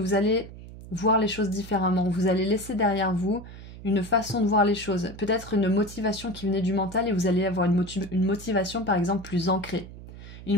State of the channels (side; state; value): right; noise; hum, 15 dB below the sound